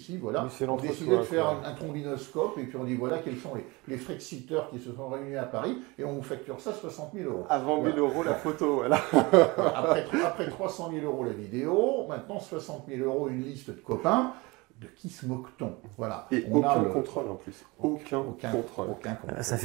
Oui, c'est on l'entre-soi, décidait de faire quoi. un trombinoscope et puis on dit voilà quels sont les Frexiteurs qui se sont réunis à Paris et on vous facture ça 60 000 euros. Avant 1000 euros la photo, voilà. Après 300 000 euros la vidéo, maintenant 60 000 euros une liste de copains. De qui se moque-t-on? Voilà. Et aucun contrôle en plus. Aucun contrôle. Ça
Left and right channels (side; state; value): left; quieter; 24.5 dB